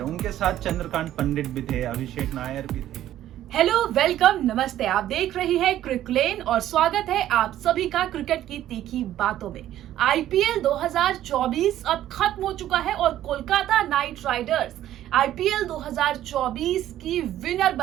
उनके साथ चंद्रकांत पंडित भी थे, अभिषेक नायर भी थे। हेलो, वेलकम, नमस्ते। आप देख रही हैं क्रिकलेन और स्वागत है आप सभी का क्रिकेट की तीखी बातों में। आईपीएल 2024 अब खत्म हो चुका है और कोलकाता नाइट राइडर्स आईपीएल 2024 की विनर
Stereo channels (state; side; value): quieter; left; 12.6 dB